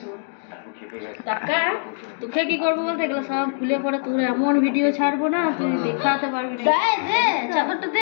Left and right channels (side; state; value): right; silent; digital silence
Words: তোকে কি করবো বলতে এগুলো সব খুলে পরে তোর এমন ভিডিও ছাড়বো না তুই দেখাতে পারবি না। দে চাদরটা